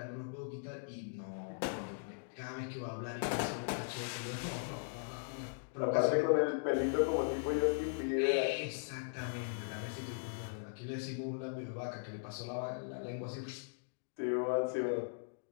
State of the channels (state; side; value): silent; right; digital silence